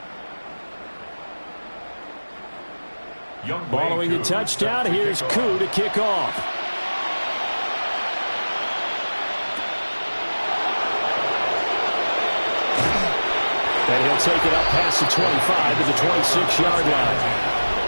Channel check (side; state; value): both; inverted; correlation -1.00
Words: Following the touchdown, here's Koo to kick off. And he'll take it up past the 25 to the 26-yard line.